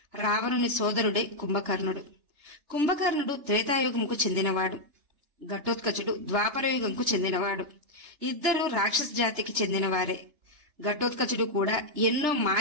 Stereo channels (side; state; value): left; late; 3.3 ms